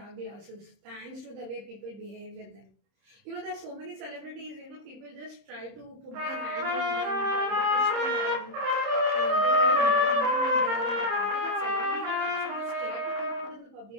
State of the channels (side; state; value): left; late; 31 ms